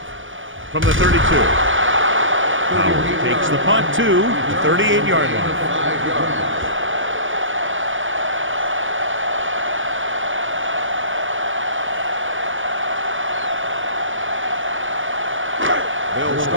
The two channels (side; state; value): left; late; 0.57 ms